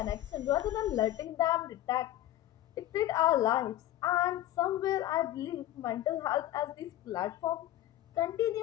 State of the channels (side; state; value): right; quieter; 13.7 dB